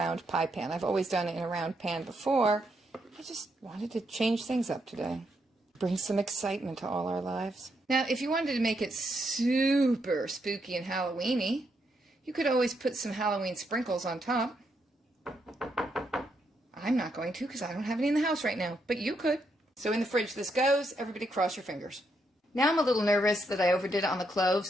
pie pan. I've always done it in a round pan before. I just wanted to change things up today. Bring some excitement to all our lives. Now, if you wanted to make it super spooky and Halloweeny, you could always put some Halloween sprinkles on top. I'm not going to because I don't have any in the house right now, but you could. So in the fridge this goes. Everybody cross your fingers. Now I'm a little nervous that I overdid it on the cloves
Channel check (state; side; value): normal; both; correlation 0.78